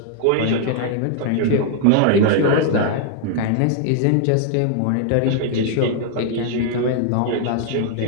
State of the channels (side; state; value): both; different; correlation 0.00